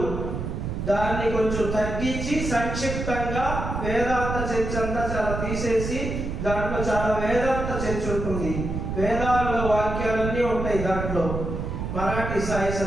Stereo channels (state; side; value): noise; right; rumble, 4 dB below the sound